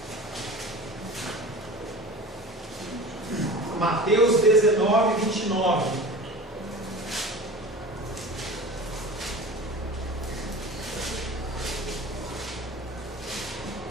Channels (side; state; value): both; normal; correlation 0.36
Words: Mateus 19, 29.